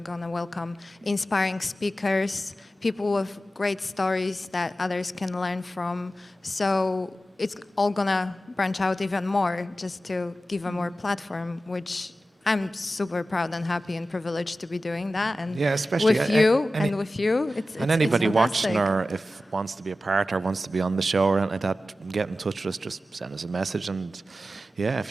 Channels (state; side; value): normal; both; correlation 0.94